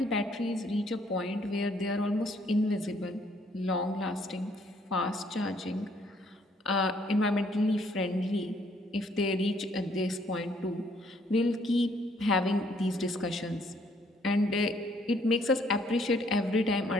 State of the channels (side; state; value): both; normal; correlation 0.66